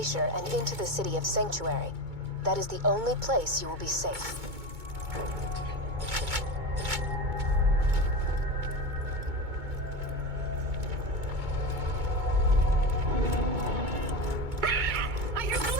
and into the city of Sanctuary. That is the only place you will be safe. I hear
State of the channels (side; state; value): left; late; 2.2 ms